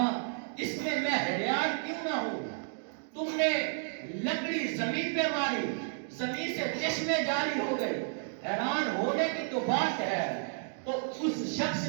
اس میں میں حیران کیوں نہ ہوں. تم نے لکڑی زمین پہ ماری, زمین سے چشمے جاری ہو گئے, حیران ہونے کی تو بات ہے. تو اس شخص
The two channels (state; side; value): silent; left; digital silence